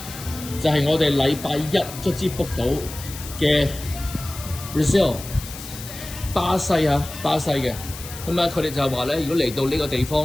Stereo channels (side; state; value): left; noise; hiss, 12 dB below the sound